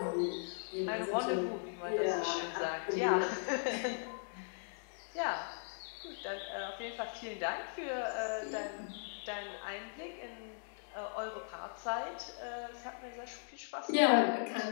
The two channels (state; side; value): silent; right; digital silence